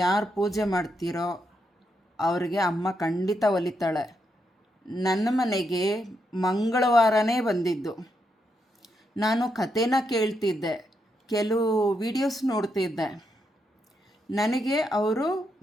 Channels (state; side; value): normal; both; correlation 0.81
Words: ಯಾರು ಪೂಜೆ ಮಾಡ್ತೀರೋ ಅವ್ರಿಗೆ ಅಮ್ಮ ಖಂಡಿತ ಒಲಿತಾಳೆ. ನನ್ನ ಮನೆಗೆ ಮಂಗಳವಾರನೇ ಬಂದಿದ್ದು. ನಾನು ಕಥೆನ ಕೇಳ್ತಿದ್ದೆ, ಕೆಲವು ವಿಡಿಯೋಸ್ ನೋಡ್ತಿದ್ದೆ. ನನಗೆ ಅವರು